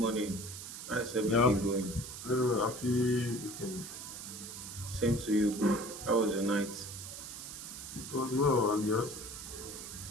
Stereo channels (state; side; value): noise; right; hiss, 10 dB below the sound